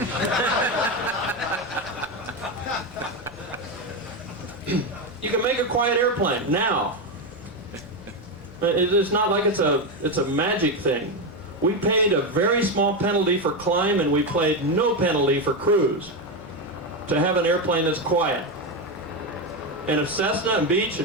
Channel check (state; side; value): normal; both; correlation 0.11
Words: You can make a quiet airplane now. It's not like it's a magic thing. We paid a very small penalty for climb, and we paid no penalty for cruise to have an airplane that's quiet. And if Cessna and Beech